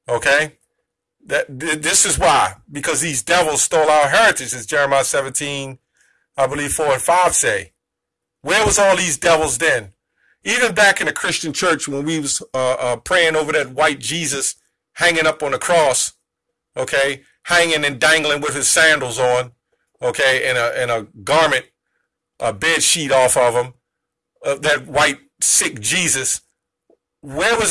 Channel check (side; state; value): both; identical; correlation 1.00